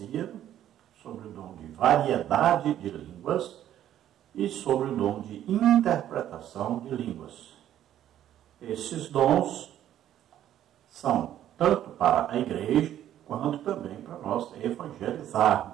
sobre o dom de variedade de línguas, e sobre o dom de interpretação de línguas. Esses dons são tanto para a igreja, quanto também para nós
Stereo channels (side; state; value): left; quieter; 11.6 dB